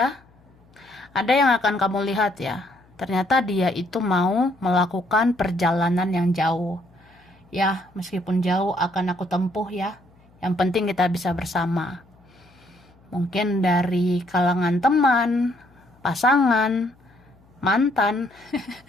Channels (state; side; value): noise; left; hum, 30 dB below the sound